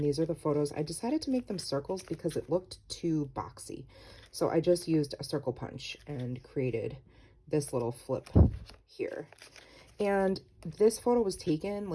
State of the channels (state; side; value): identical; both; correlation 1.00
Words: are the photos. I decided to make them circles because it looked too boxy. So I just used a circle punch and created this little flip here. And this photo was taken